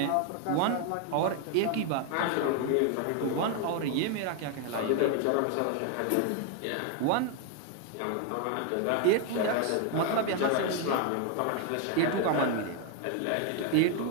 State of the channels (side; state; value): both; different; correlation 0.01